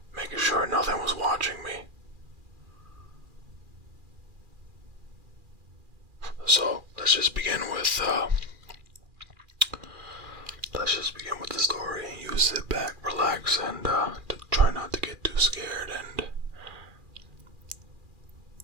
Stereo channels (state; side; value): late; left; 2.4 ms